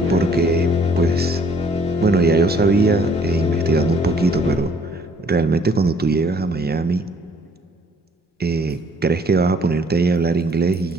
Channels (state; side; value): normal; both; correlation 0.60